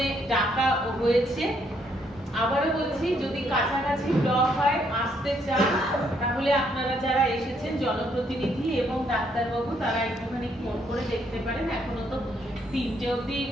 ডাকা হয়েছে। আবারও বলছি, যদি কাছাকাছি ব্লক হয়, আসতে চান, তাহলে আপনারা যারা এসেছেন জনপ্রতিনিধি এবং ডাক্তারবাবু, তারা একটুখানি ফোন করে দেখতে পারেন। এখনো তো 3টে অবধি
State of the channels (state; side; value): normal; both; correlation 0.71